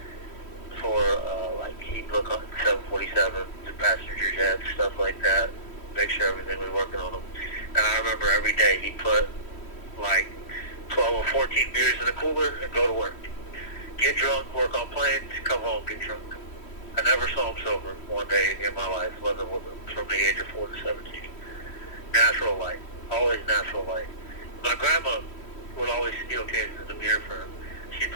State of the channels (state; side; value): late; right; 3.1 ms